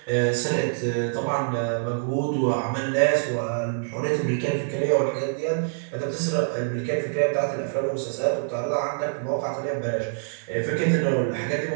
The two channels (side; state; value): left; silent; digital silence